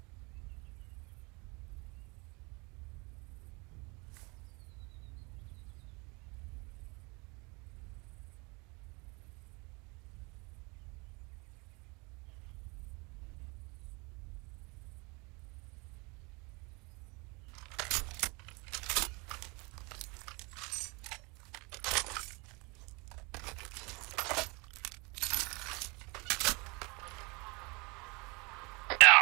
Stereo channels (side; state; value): left; quieter; 28.2 dB